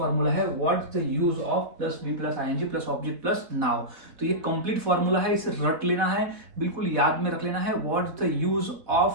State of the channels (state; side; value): late; left; 4.1 ms